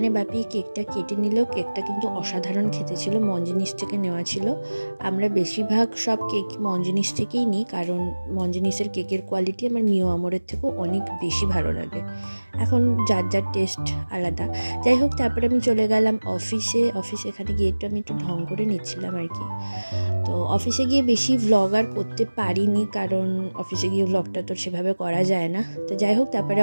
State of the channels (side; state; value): both; inverted; correlation -1.00